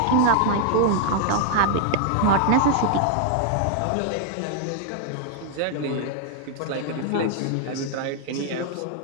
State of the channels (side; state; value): both; different; correlation 0.00